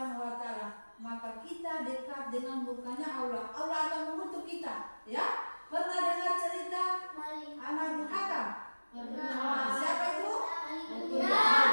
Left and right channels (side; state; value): both; inverted; correlation -1.00